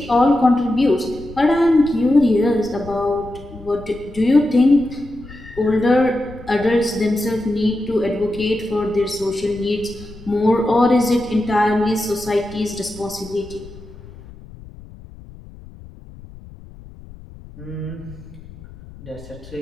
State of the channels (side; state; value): left; noise; rumble, 18 dB below the sound